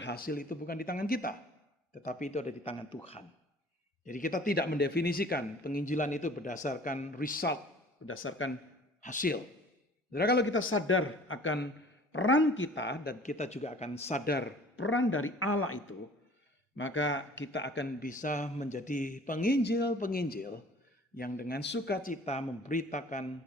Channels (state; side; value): normal; both; correlation 0.49